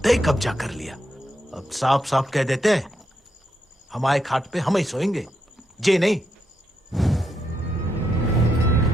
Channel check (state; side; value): normal; both; correlation 0.81